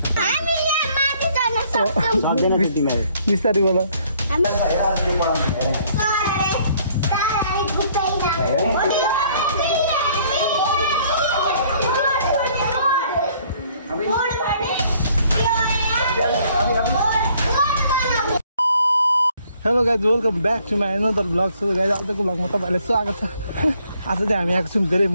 बिस्तारै बोल hello guys welcome back to my another blog. So guys आजको ब्लगमा तपाईँलाई स्वागत छ। आज चाहिँ हामी आएको छौँ धेरै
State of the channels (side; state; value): both; inverted; correlation -0.62